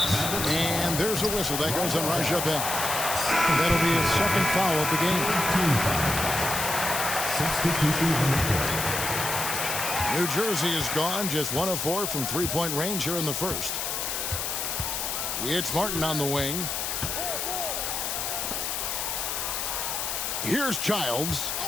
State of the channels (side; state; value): left; noise; hiss, 2 dB below the sound